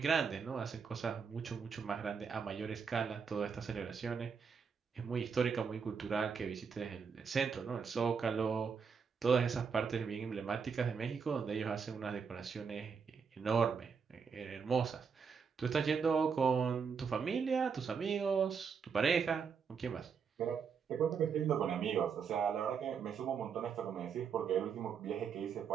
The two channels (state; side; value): quieter; left; 6.2 dB